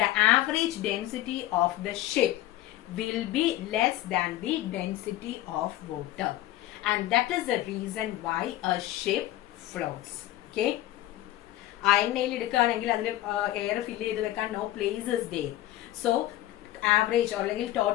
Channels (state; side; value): quieter; right; 15.0 dB